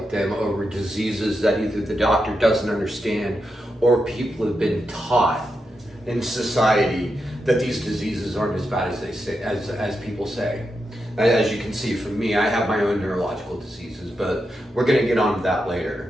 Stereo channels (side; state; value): both; normal; correlation 0.86